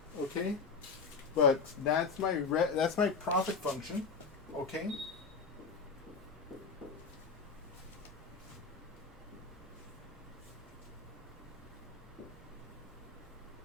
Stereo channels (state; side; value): quieter; right; 4.9 dB